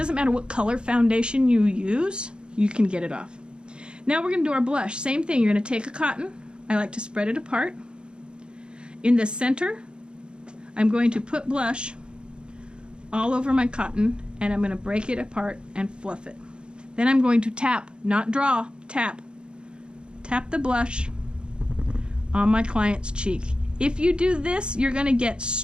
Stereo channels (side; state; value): left; late; 0.053 ms